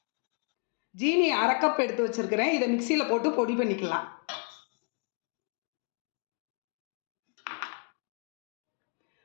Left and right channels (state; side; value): quieter; right; 37.8 dB